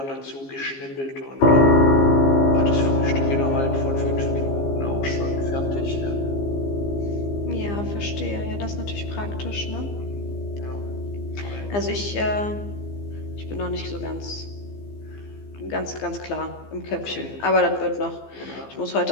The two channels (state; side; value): late; right; 15 ms